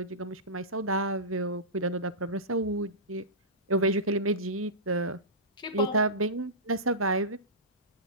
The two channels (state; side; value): normal; both; correlation -0.20